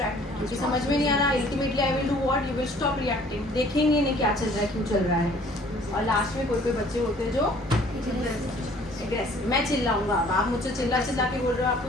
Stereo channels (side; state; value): both; normal; correlation 0.55